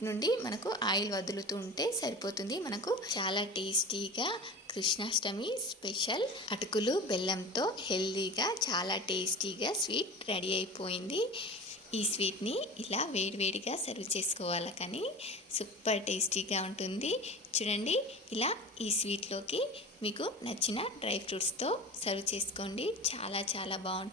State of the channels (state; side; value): normal; both; correlation 0.33